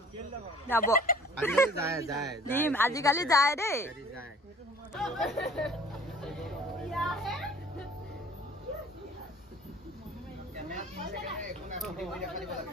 যাব দিম। আজিকালি যায় দেই।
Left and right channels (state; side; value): normal; both; correlation 0.51